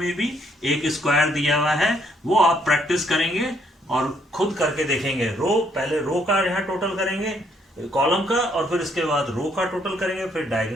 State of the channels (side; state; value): both; normal; correlation 0.70